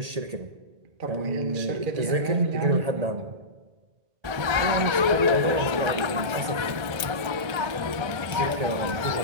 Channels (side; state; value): left; late; 1.3 ms